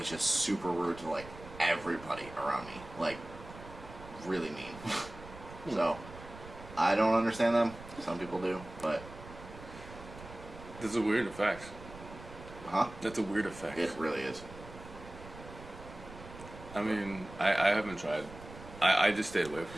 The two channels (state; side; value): noise; right; rumble, 15 dB below the sound